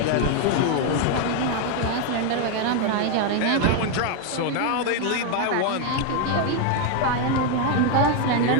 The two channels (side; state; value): both; different; correlation 0.01